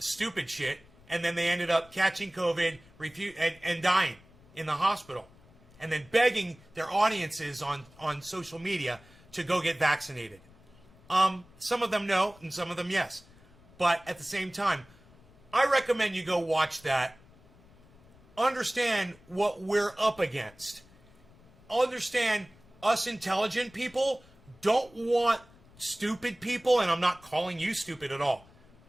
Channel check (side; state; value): left; noise; rumble, 26 dB below the sound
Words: shit. And then they ended up catching COVID and dying in the hospital. And then begging their audiences on social media to go get vaccinated. Some of them no, and some of them yes. But at the same time, I recommend you go watch that. Understand what we're up against. Understand us intelligent people don't want stupid people, and I'm not calling you stupid at all.